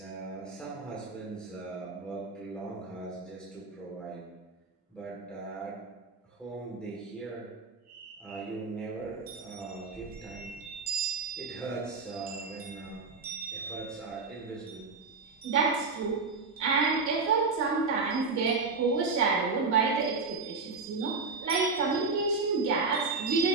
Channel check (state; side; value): quieter; left; 4.2 dB